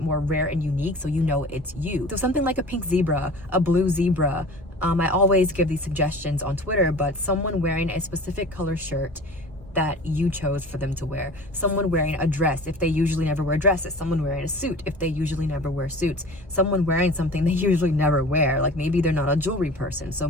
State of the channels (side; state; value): both; normal; correlation 0.40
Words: more rare and unique, so you know it's you. So something like a pink zebra, a blue zebra. I always give these suggestions on Twitter, but someone wearing a specific color shirt that you chose for them to wear. Someone wearing a dress if they usually never wear dresses. Someone wearing a suit if they usually never wear suits. Someone wearing something they usually never wear. Like, maybe they're not a jewelry person, so